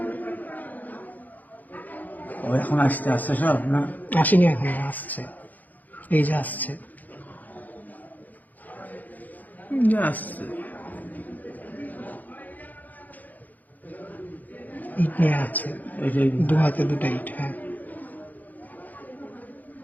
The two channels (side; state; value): right; late; 0.082 ms